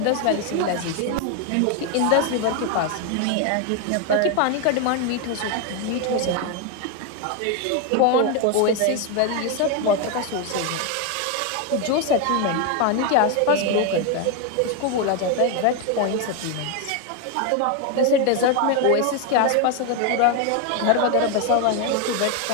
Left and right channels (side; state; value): both; different; correlation 0.01